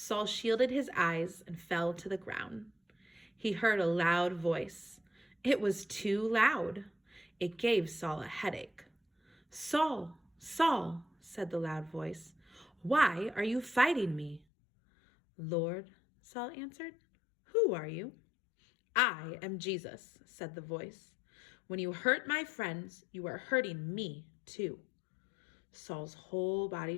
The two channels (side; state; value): right; drops out; at 14.4 s